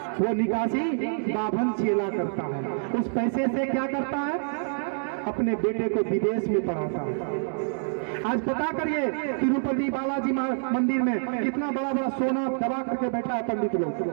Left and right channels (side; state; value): left; silent; digital silence